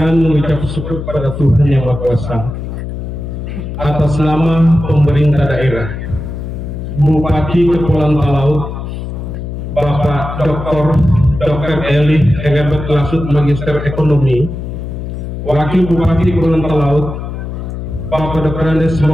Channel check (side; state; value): left; noise; hum, 7 dB below the sound